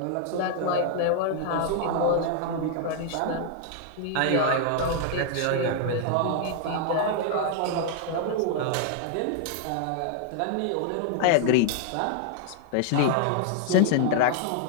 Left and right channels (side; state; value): both; different; correlation 0.00